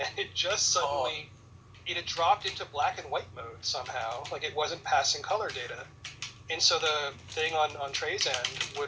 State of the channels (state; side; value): identical; both; correlation 1.00